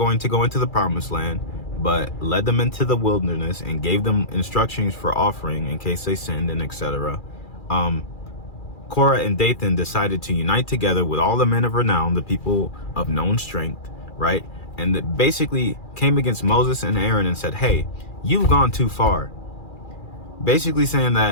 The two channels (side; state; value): right; late; 2.4 ms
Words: to go into the promised land, but led them into the wilderness and gave them instructions for offering in case they sinned and etc. Korah and Dathan decided to unite together with all the men of renown, the people of known strength, right? And that basically came against Moses and Aaron and said, hey, you've gone too far. Basically saying